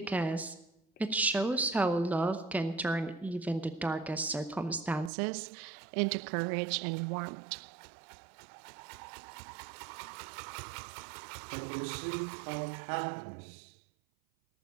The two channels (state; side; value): drops out; left; at 5.1 s